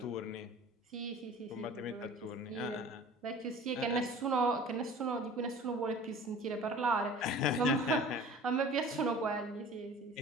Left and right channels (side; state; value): both; normal; correlation 0.44